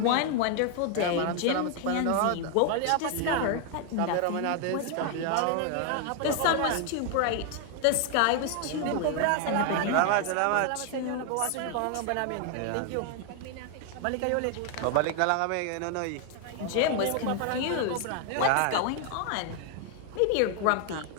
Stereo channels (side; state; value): both; different; correlation 0.00